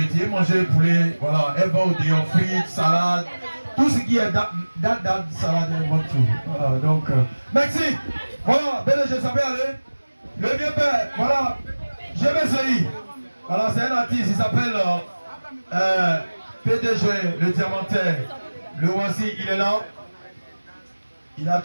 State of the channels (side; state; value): both; inverted; correlation -1.00